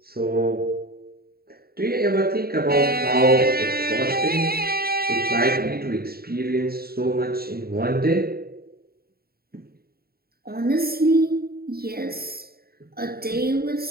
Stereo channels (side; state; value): left; late; 0.45 ms